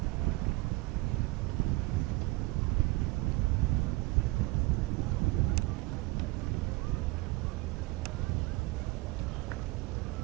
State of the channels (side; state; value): left; quieter; 22.0 dB